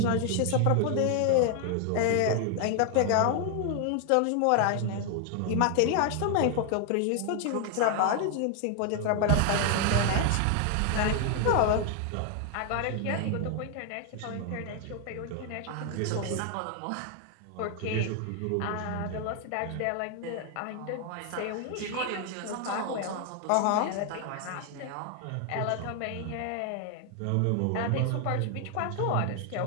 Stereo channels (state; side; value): different; both; correlation 0.00